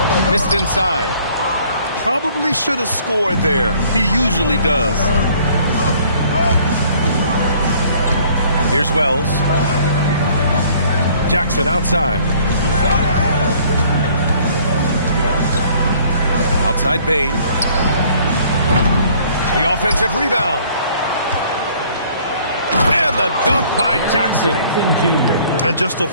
Missed inside. Probably should have scored there. He usually does. Here's Wells. Jackson outside. Outside Bain. The offensive rebound. And the dunk by Jackson. And just a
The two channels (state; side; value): inverted; both; correlation -0.57